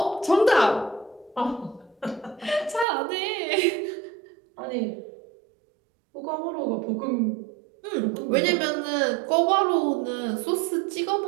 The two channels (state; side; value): drops out; left; at 2.9 s